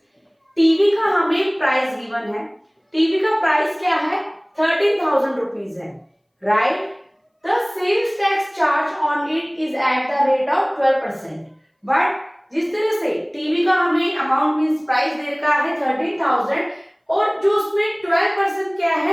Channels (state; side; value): identical; both; correlation 1.00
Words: TV का हमें प्राइस गिवन है। टीवी का प्राइस क्या है? 13,000 रुपीज है, right. The sales tax charge on it is at the rate of 12%. But जिस तरह से टीवी का हमें अमाउंट मींस प्राइस दे रखा है 13,000 और जो उसमें 12% क्या है,